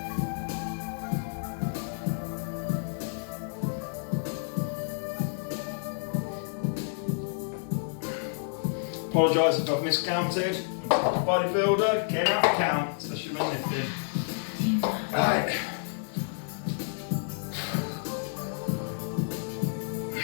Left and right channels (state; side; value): silent; right; digital silence